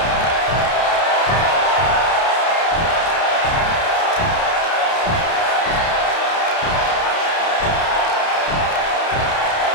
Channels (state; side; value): late; right; 31 ms